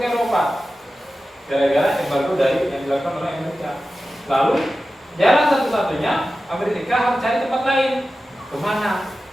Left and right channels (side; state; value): both; normal; correlation 0.94